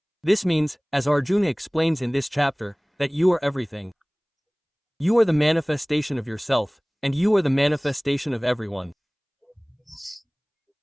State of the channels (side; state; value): both; identical; correlation 1.00